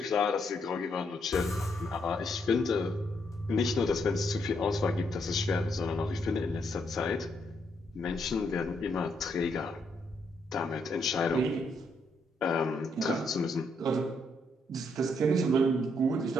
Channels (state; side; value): normal; both; correlation 0.75